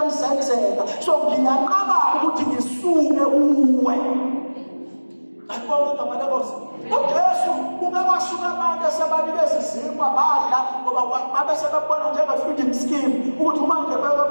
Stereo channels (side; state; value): both; inverted; correlation -1.00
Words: zenzeka. So ngiyaqaba ukuthi ngisuke uwe. Akubonga igama lenkosi. uJesu ungabashuka abantu esebanikeza izimpa badla ngoba babe sebebona njenge-feeding scheme ukuthi manje